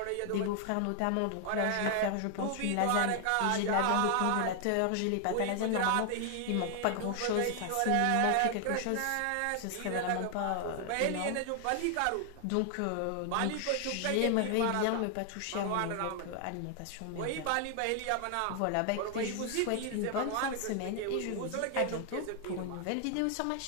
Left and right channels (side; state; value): both; different; correlation 0.00